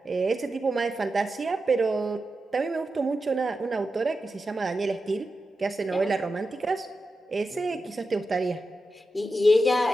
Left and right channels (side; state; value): both; normal; correlation 0.90